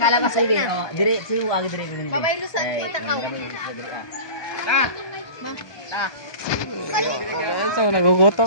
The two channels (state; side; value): late; right; 1.2 ms